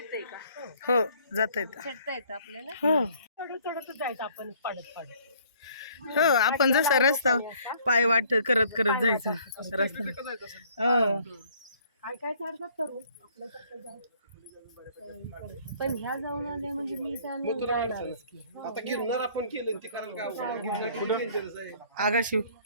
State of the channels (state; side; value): inverted; both; correlation -0.59